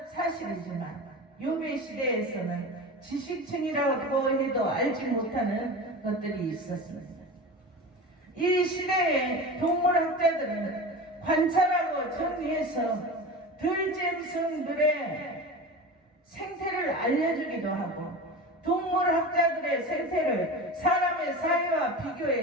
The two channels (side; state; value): both; normal; correlation 0.30